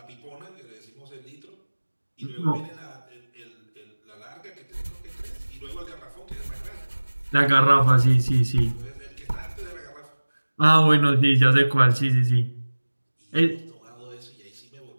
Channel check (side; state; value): both; inverted; correlation -1.00